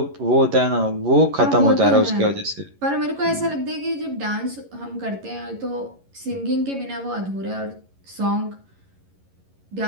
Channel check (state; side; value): late; left; 11 ms